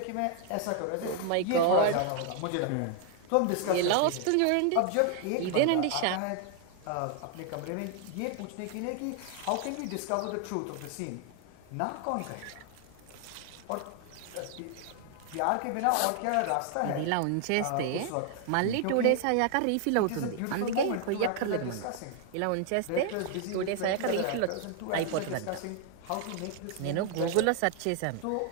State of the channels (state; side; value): different; both; correlation 0.00